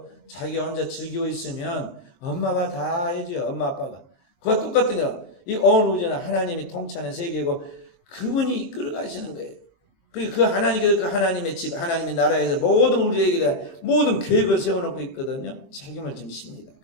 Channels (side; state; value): right; late; 23 ms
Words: 자기 혼자 즐기고 있으면 엄마가 다 해줘요. 엄마 아빠가. 그와 똑같은요. 이 온 우주는 하나님이 통치하는 세계고 그분이 이끌어 가시는 거예요. 그리고 그 하나님께서 그 하나님의 집, 하나님의 나라에서 모든 우리에게 대한 모든 계획을 세워놓고 있거든요. 책임을 지십니다.